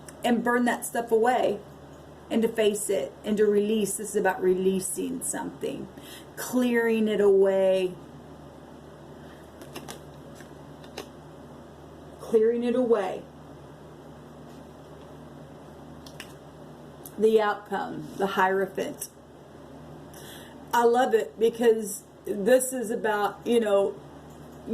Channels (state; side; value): identical; both; correlation 1.00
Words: and burn that stuff away, and to face it and to release. This is about releasing something, clearing it away, clearing it away. The outcome, the Hierophant. I love it because this is about,